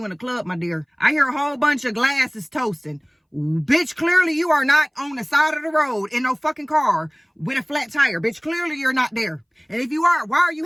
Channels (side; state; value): both; identical; correlation 1.00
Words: in a club, my dear? I hear a whole bunch of glasses toasting. Bitch, clearly you are not on the side of the road in no fucking car with a flat tire. Bitch, clearly you're not there. And if you are, why are you